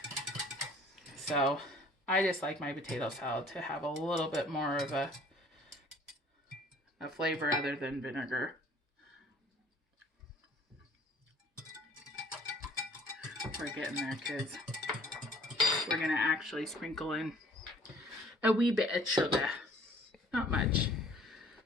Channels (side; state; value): both; normal; correlation 0.56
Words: So I just like my potato salad to have a little bit more of a flavor other than vinegar. We're getting there, kids. We're going to actually sprinkle in a wee bit of sugar. Not much.